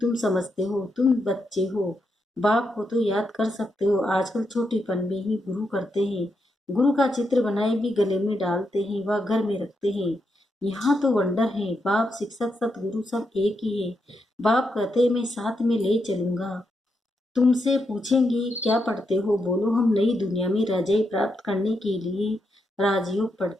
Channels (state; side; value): normal; both; correlation 0.83